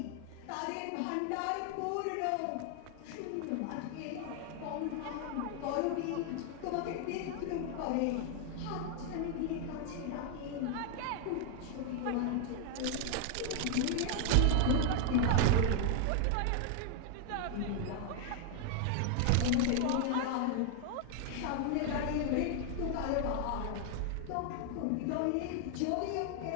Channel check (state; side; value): different; both; correlation 0.00